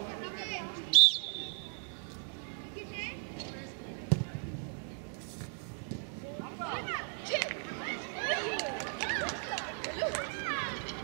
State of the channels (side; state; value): left; silent; 54 dB below the other